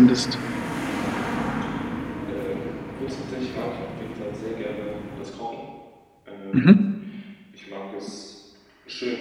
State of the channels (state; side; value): identical; both; correlation 1.00